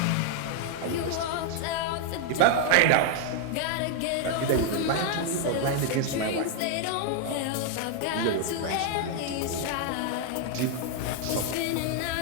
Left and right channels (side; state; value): both; different; correlation 0.00